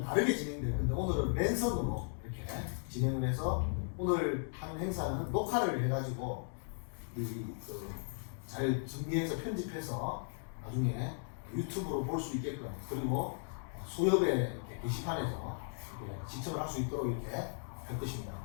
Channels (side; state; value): right; silent; digital silence